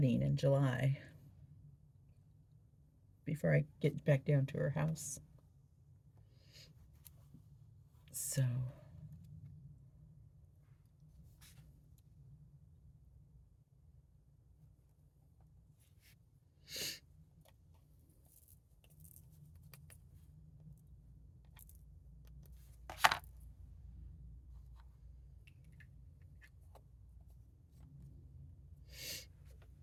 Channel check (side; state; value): both; identical; correlation 1.00